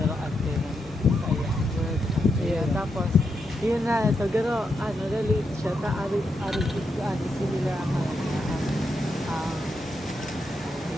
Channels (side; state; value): both; normal; correlation 0.83